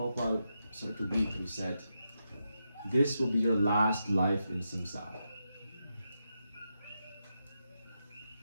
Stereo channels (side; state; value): both; inverted; correlation -0.85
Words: started to weep and he said, this will be your last life in samsara.